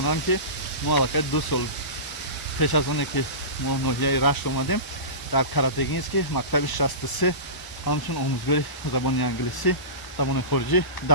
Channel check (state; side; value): late; right; 1.0 ms